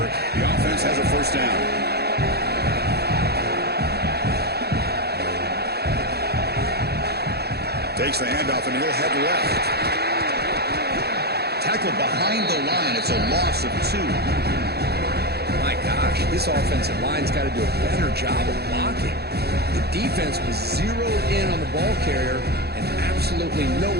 The offense has a first down. Takes the handoff and he'll head left. Tackle behind the line. It's a loss of 2. My gosh, this offensive line's got to do a better job of blocking. The defense was zeroed in on the ball carrier and absolutely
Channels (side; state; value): left; late; 0.47 ms